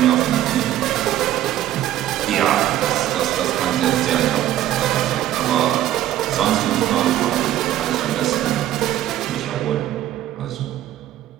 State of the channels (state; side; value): quieter; left; 12.9 dB